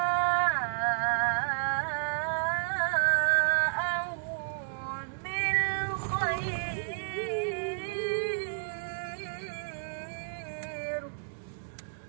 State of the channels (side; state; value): left; silent; digital silence